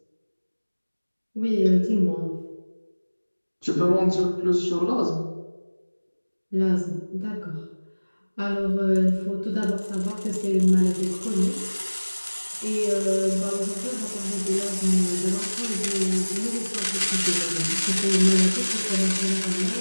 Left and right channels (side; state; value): both; inverted; correlation -1.00